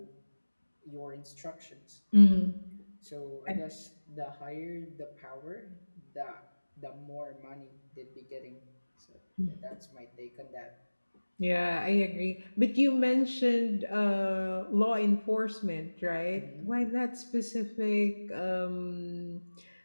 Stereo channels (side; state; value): both; inverted; correlation -1.00